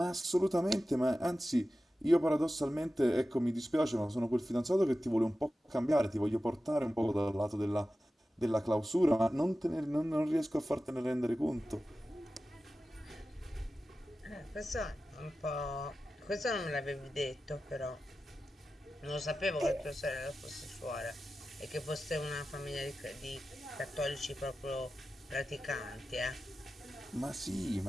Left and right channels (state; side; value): normal; both; correlation 0.94